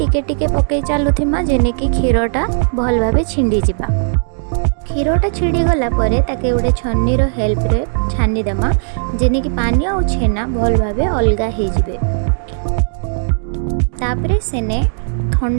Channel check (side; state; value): left; silent; digital silence